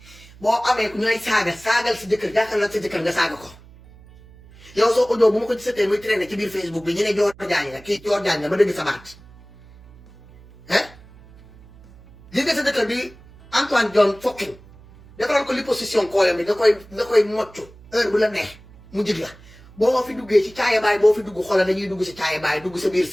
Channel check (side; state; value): right; noise; hum, 23 dB below the sound